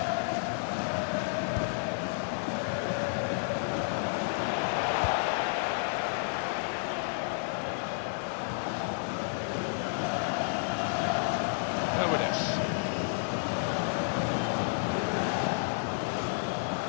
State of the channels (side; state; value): right; silent; digital silence